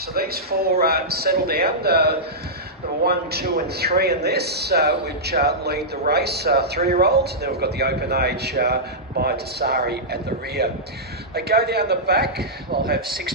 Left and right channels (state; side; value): normal; both; correlation -0.13